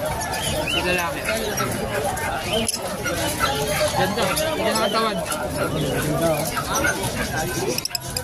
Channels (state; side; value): identical; both; correlation 1.00